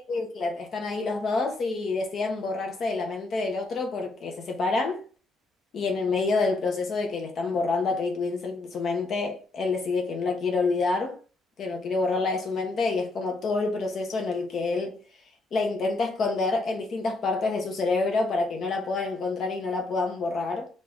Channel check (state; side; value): quieter; right; 3.2 dB